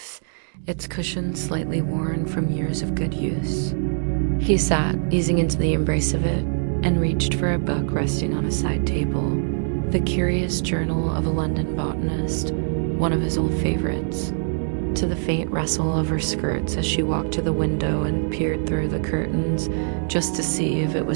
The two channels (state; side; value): silent; left; digital silence